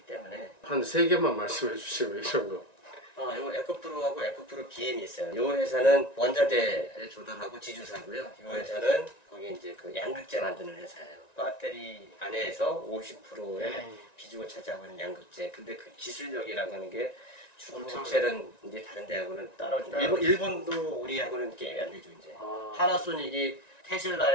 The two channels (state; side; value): late; right; 1.9 ms